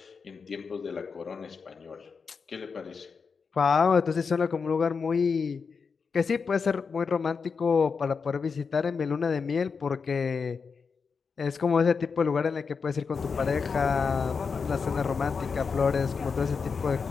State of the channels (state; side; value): quieter; right; 5.4 dB